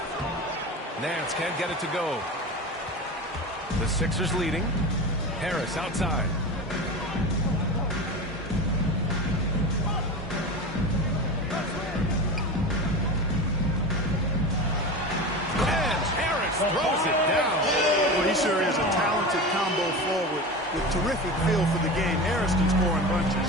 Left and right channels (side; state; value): both; normal; correlation 0.27